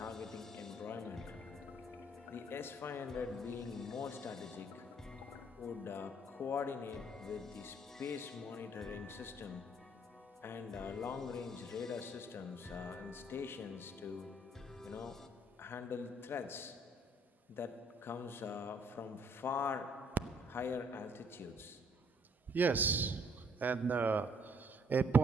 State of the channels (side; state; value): both; normal; correlation 0.64